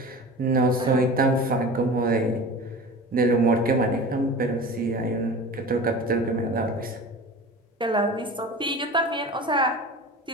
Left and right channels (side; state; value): both; normal; correlation 0.36